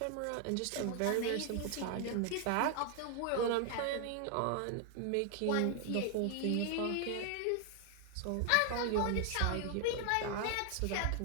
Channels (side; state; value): both; different; correlation 0.00